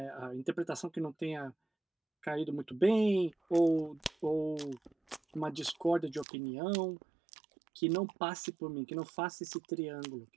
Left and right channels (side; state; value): left; drops out; at 6.2 s